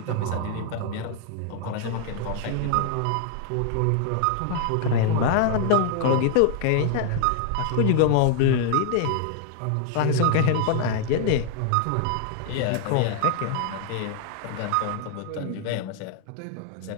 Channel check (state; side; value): different; both; correlation 0.00